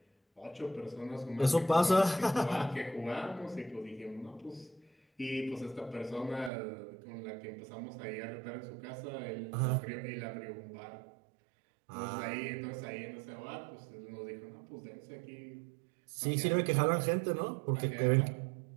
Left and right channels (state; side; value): drops out; left; at 6.5 s